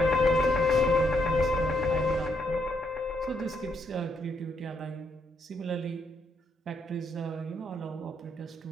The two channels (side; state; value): both; normal; correlation 0.76